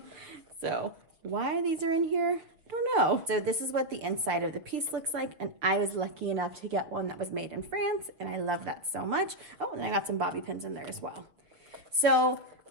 So why these are in here, I don't know. So this is what the inside of the piece looks like, and I was lucky enough to get one that was made in France, and I love that so much. Oh, and I got some bobby pins in there as well. So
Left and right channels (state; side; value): late; left; 6.0 ms